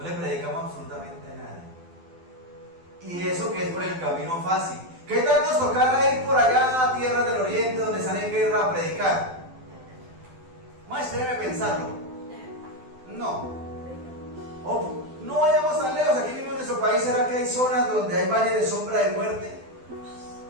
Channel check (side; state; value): left; late; 12 ms